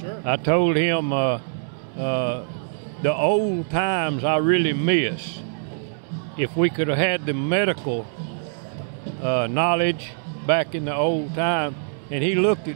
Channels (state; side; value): silent; left; digital silence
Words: I told him the old times I really miss. If we could have had the medical knowledge back in the old time. And he looked